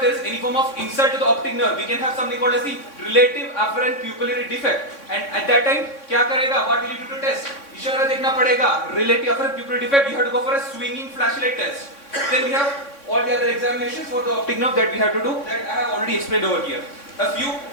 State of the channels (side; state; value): right; late; 3.6 ms